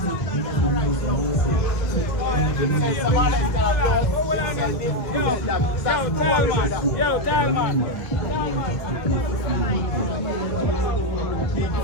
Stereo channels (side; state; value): right; late; 1.5 ms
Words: Yo, tell man.